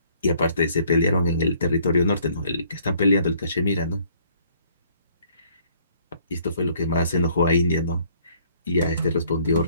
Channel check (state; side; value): inverted; both; correlation -0.62